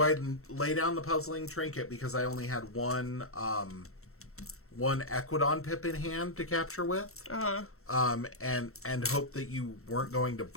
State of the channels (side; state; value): right; late; 0.63 ms